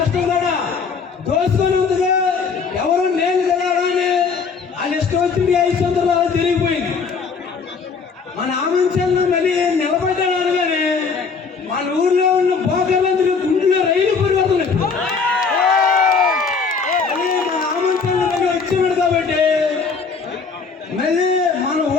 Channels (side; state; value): right; quieter; 5.2 dB